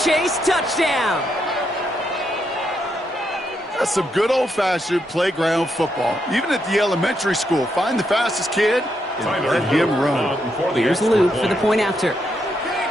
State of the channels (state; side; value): normal; both; correlation 0.79